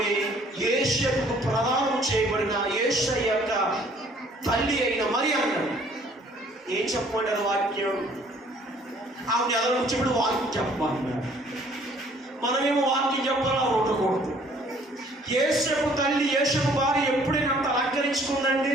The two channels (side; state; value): both; normal; correlation 0.58